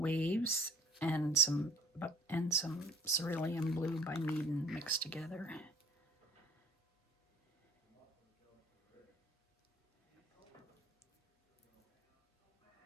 and some cerulean blue by Meaden mixed together.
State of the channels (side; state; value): both; normal; correlation 0.51